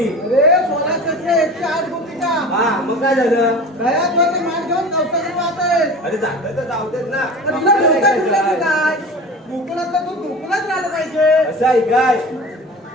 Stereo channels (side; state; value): both; normal; correlation 0.35